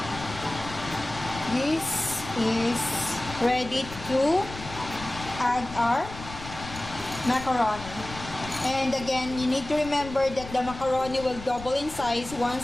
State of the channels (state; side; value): noise; left; rumble, 13 dB below the sound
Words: this is ready to add our macaroni. And again, you need to remember that the macaroni will double in size once